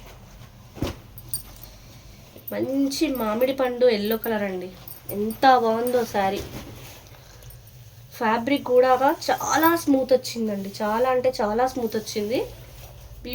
మంచి మామిడి పండు ఎల్లో కలర్ అండి, ఎంత బాగుందో శారీ. ఫ్యాబ్రిక్ కూడా చాలా స్మూత్ వచ్చిందండి, చాలా అంటే చాలా స్మూత్ వచ్చింది,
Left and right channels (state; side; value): identical; both; correlation 1.00